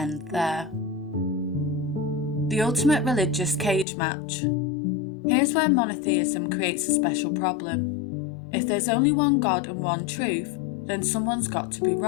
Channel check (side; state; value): right; drops out; at 3.9 s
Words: there. The ultimate religious cage match. Here's where monotheism creates a special problem. If there's only one God and one truth, then someone's got to be